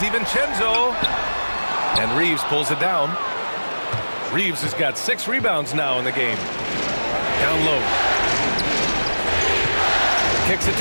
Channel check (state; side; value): inverted; both; correlation -1.00